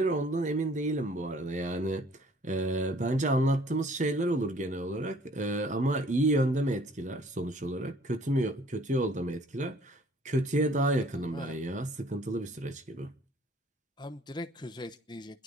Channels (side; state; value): both; normal; correlation 0.56